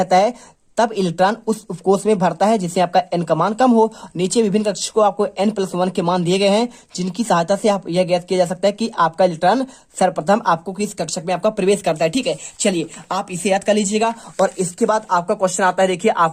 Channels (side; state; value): both; identical; correlation 1.00